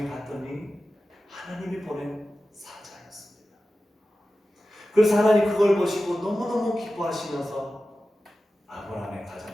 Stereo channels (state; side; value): normal; both; correlation 0.94